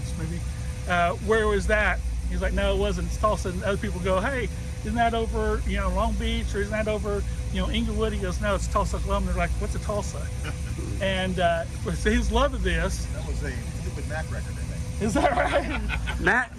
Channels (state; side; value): identical; both; correlation 1.00